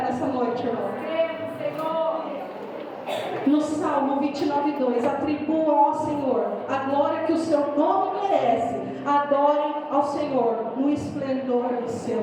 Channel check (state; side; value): identical; both; correlation 1.00